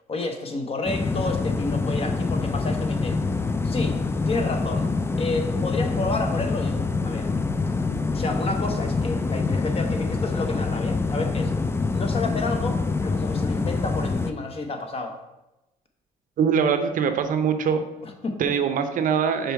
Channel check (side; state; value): both; normal; correlation 0.65